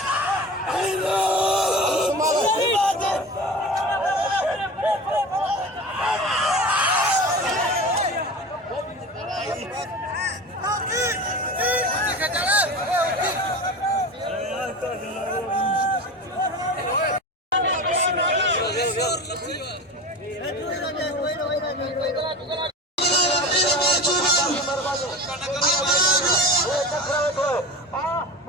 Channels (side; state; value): both; normal; correlation 0.32